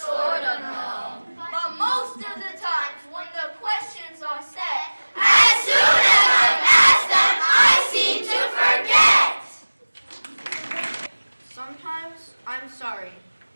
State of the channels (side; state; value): both; inverted; correlation -1.00